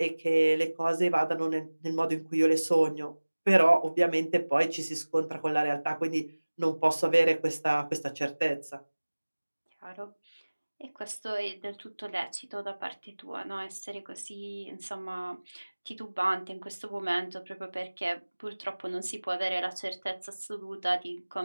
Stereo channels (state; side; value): inverted; both; correlation -1.00